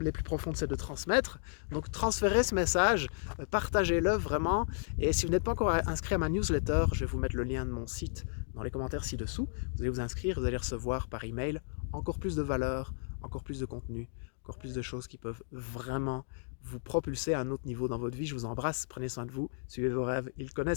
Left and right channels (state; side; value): silent; right; digital silence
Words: plus profondes, c'est de transmettre. Donc, transférez ce message, partagez-le vraiment. Et si vous n'êtes pas encore inscrit à ma newsletter, je vais vous mettre le lien de mon site dans les commentaires ci-dessous. Vous allez vous inscrire, vous allez recevoir par email encore plus de valeurs, encore plus de contenu, encore plus de choses qui peuvent vraiment vous propulser à un autre niveau dans votre vie. Je vous embrasse, prenez soin de vous, suivez vos rêves, ils